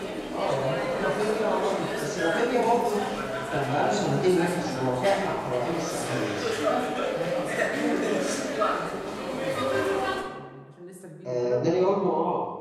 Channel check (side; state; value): both; identical; correlation 1.00